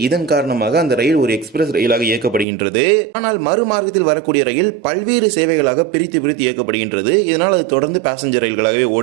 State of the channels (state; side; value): drops out; left; at 2.5 s